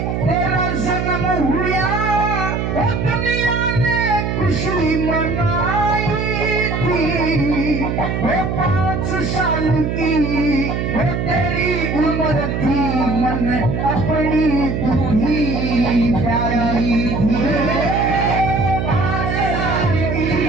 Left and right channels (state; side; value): noise; right; hum, 1 dB below the sound